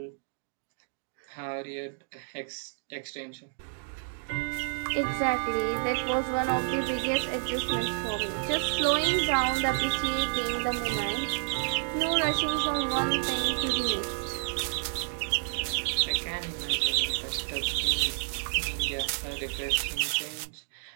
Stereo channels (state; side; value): silent; left; digital silence